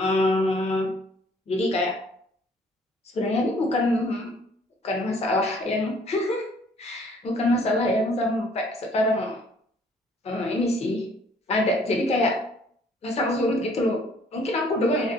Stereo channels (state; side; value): normal; both; correlation 0.59